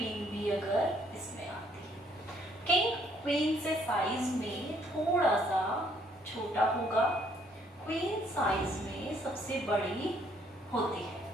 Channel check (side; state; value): both; normal; correlation 0.66